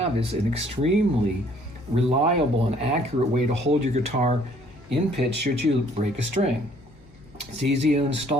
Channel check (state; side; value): normal; both; correlation 0.60